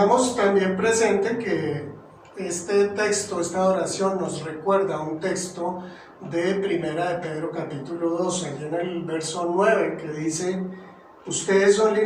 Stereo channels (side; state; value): both; identical; correlation 1.00